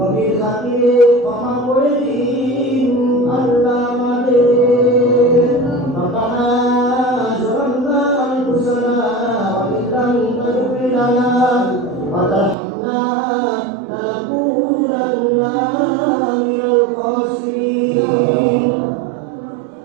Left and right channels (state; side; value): drops out; left; at 12.6 s